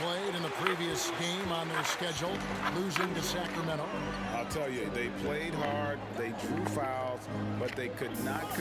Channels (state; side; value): identical; both; correlation 1.00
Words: in the previous game on their schedule, losing to Sacramento. I'll tell you, they played hard, they drew fouls, but they could not